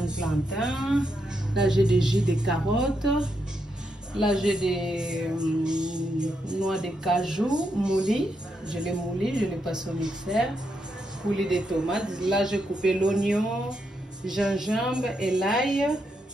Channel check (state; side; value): normal; both; correlation 0.81